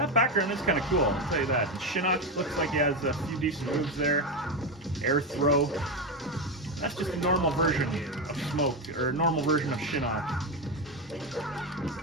background is kind of cool, I'll tell you that. And Shinnok looks like he has a few decent moves there. Air throw. That's just a normal version of Smoke, or a normal version of Shinnok.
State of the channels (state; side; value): normal; both; correlation 0.12